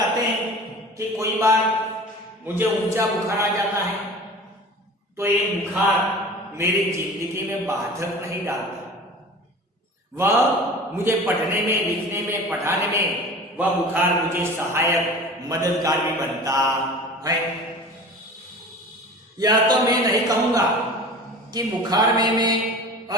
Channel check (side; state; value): both; normal; correlation 0.39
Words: हैं कि कोई बार मुझे ऊंचा बुखार आ जाता है तो ये बुखार मेरी जिंदगी में बाधक नहीं डालता। वह मुझे पढ़ने में, लिखने में, पढ़ाने में वह बुखार मुझे सहायक, मददगार भी बनता है। यह तो मैं नहीं कहूंगा कि बुखार में मैं